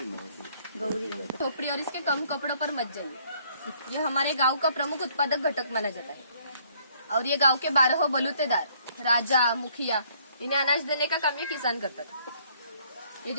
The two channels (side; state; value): both; inverted; correlation -0.64